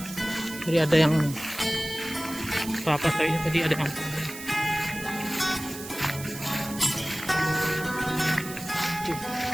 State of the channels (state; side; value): noise; right; hiss, 12 dB below the sound